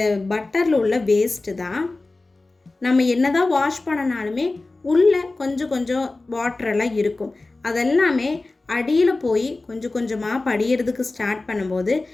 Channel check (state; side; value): quieter; right; 3.2 dB